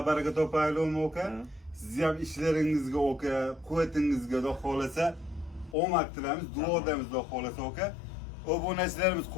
baraka topaylikmi Oka? Sizni ham ishlaringizga Oka, quvvatingizga xudo xolasa omad tilaymiz, duodamiz xudo xolasa Oka. Obunachilarimiz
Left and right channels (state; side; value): drops out; right; at 5.8 s